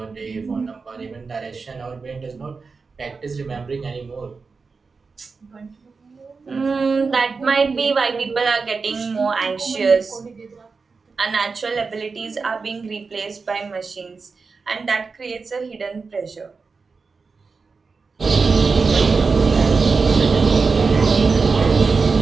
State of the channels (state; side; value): quieter; left; 4.6 dB